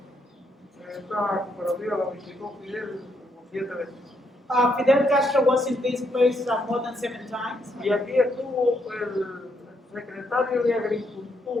Esta cooperativa la visitó Fidel como 7 veces. Fidel Castro was in this place more than 7 times. Y aquí estuvo el secretario de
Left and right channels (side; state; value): both; normal; correlation 0.75